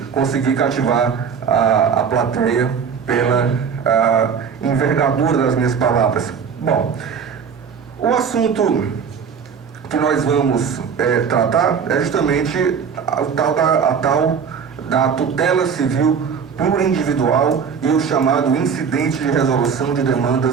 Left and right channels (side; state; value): left; quieter; 6.6 dB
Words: conseguir cativar a plateia pela envergadura das minhas palavras. Bom, o assunto que nós vamos tratar é justamente a tal da tutela civil plurindividual e o chamado incidente de resolução de